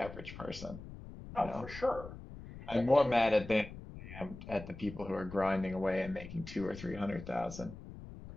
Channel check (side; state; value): left; noise; rumble, 13 dB below the sound